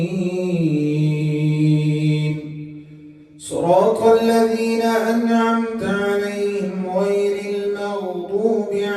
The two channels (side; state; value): both; identical; correlation 1.00